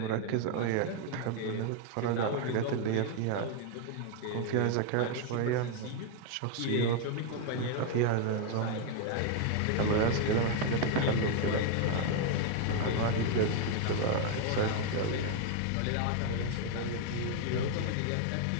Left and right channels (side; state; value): both; different; correlation 0.00